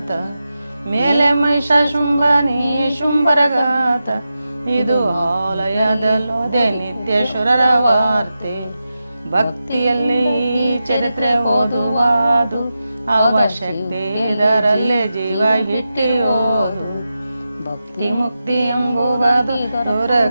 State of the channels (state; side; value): inverted; both; correlation -0.91